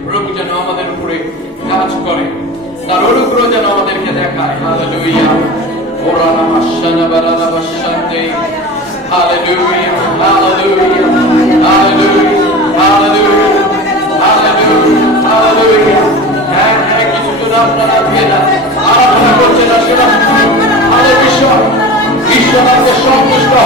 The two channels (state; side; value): normal; both; correlation 0.33